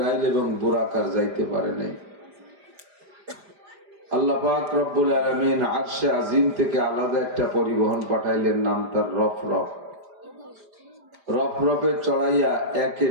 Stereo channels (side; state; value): left; late; 5.0 ms